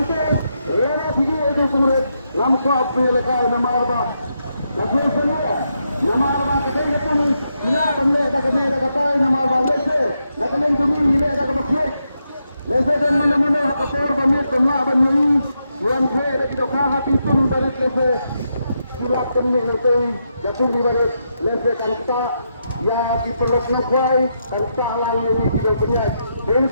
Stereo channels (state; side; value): inverted; both; correlation -0.82